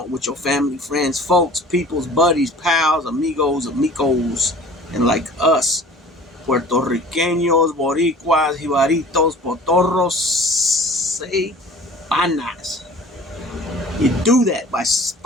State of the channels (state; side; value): normal; both; correlation 0.45